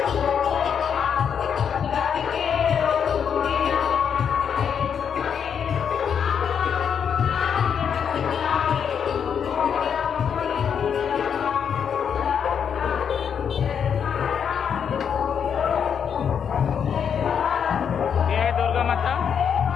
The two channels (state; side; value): quieter; right; 7.6 dB